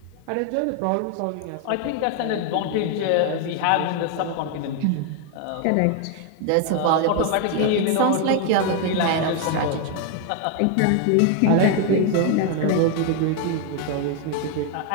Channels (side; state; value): both; different; correlation 0.01